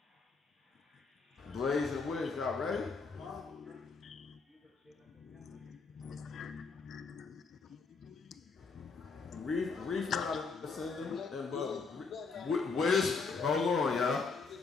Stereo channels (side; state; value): right; quieter; 4.7 dB